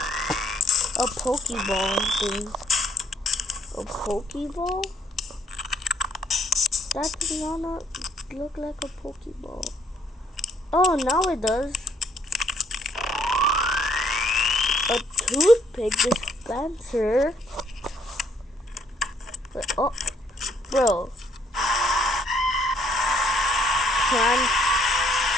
A Pokeball thing. A Pokeball? That does not look like a Pokeball. Oh, now it does. A toothpick dispenser. Wait, oh, bro.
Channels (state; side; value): normal; both; correlation 0.66